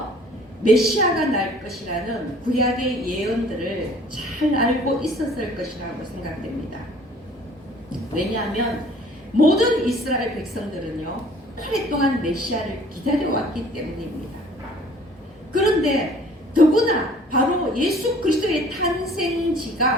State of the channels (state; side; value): normal; both; correlation 0.53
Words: 메시아가 날 것이라는 구약의 예언들을 잘 알고 있었을 것이라고 생각됩니다. 왜냐하면 모든 이스라엘 백성들은요, 오랫동안 메시아를 기다려왔기 때문입니다. 그런데 더구나 바로 예수 그리스도의